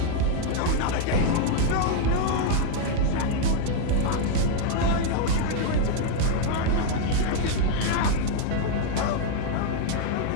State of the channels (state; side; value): different; both; correlation 0.00